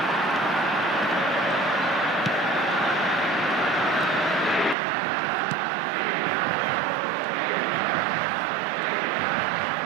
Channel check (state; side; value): drops out; left; at 4.8 s